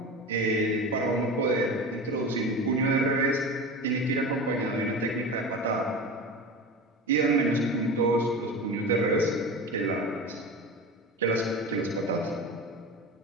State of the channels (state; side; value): normal; both; correlation 0.29